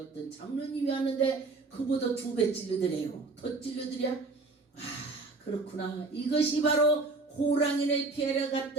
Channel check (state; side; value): quieter; left; 3.6 dB